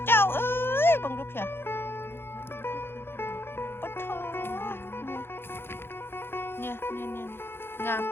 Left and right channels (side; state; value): right; late; 0.11 ms